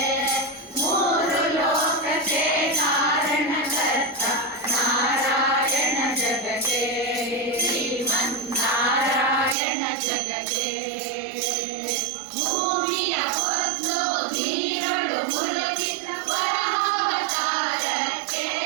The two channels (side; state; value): left; drops out; at 9.6 s